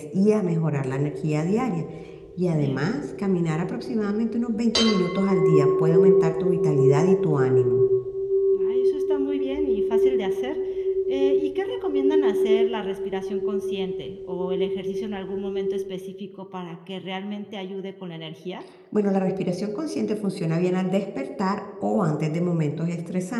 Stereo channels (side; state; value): both; identical; correlation 1.00